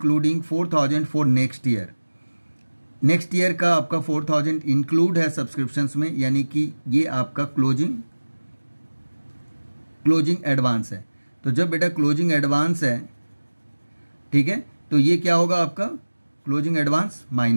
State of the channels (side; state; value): both; inverted; correlation -1.00